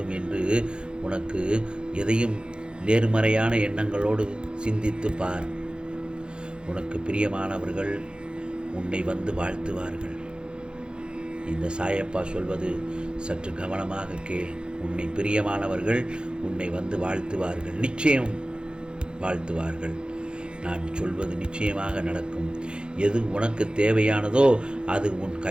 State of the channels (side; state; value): left; late; 0.051 ms